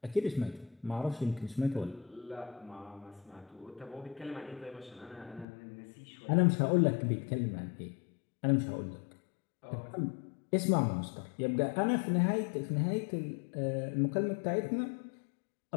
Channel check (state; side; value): drops out; right; at 5.5 s